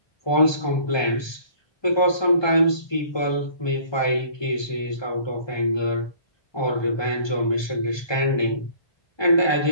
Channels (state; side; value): late; right; 1.2 ms